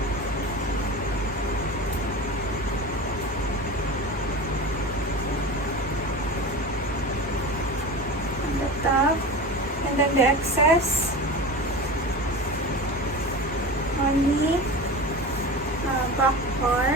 On the top, and then the excess on the back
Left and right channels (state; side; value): normal; both; correlation 0.29